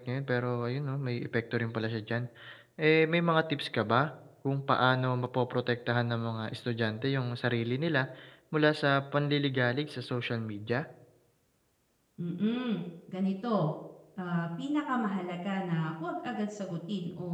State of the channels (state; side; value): identical; both; correlation 1.00